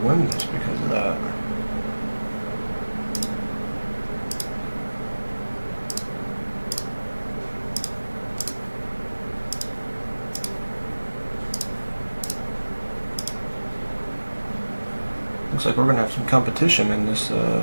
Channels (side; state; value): both; inverted; correlation -1.00